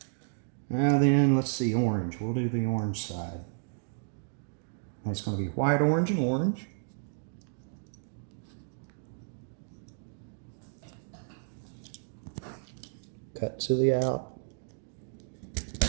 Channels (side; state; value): left; silent; digital silence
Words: Now then, let's see, orange. We'll do the orange side. And it's going to be white, orange, and orange. Cut to the out.